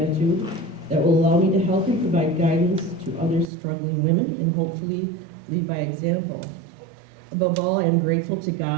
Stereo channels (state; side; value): drops out; left; at 3.5 s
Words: that will allow me to help and provide guidance to other struggling women and hopefully lead by example. Above all, I am grateful to